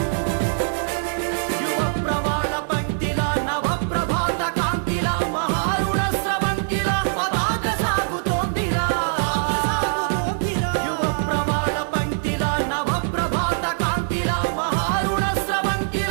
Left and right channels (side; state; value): left; silent; 64 dB below the other